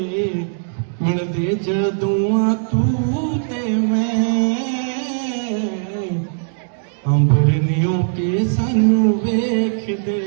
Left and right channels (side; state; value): left; silent; digital silence